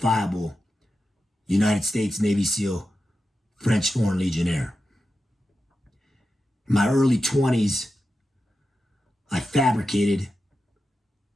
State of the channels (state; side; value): normal; both; correlation 0.91